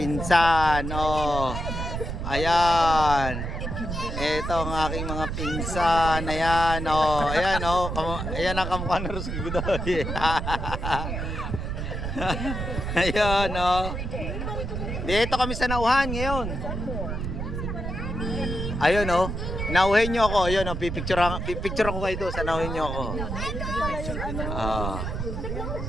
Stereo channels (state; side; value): noise; right; rumble, 4 dB below the sound